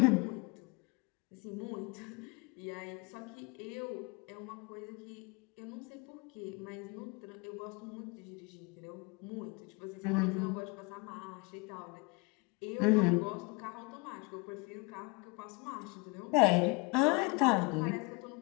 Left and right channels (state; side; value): quieter; right; 28.2 dB